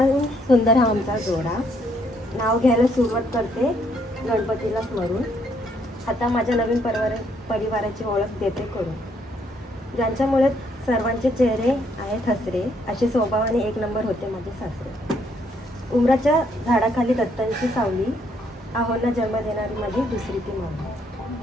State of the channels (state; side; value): normal; both; correlation 0.70